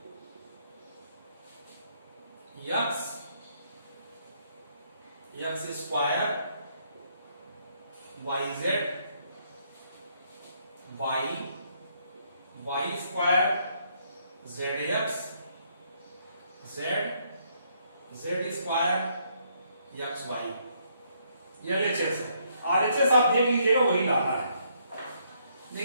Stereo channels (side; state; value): both; inverted; correlation -0.71